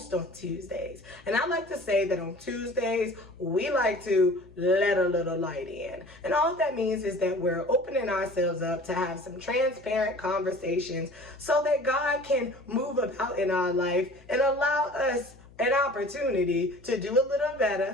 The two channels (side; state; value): left; noise; hum, 24 dB below the sound